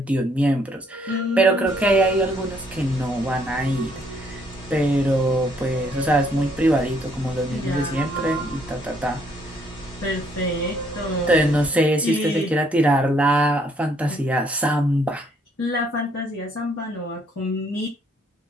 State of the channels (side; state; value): both; normal; correlation 0.67